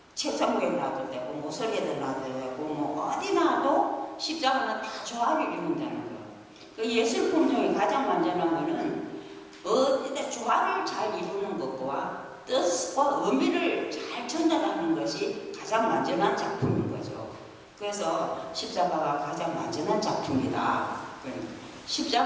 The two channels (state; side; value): identical; both; correlation 1.00